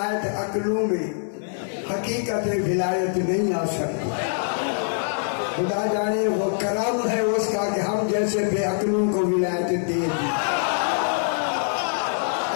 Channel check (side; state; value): right; silent; 63 dB below the other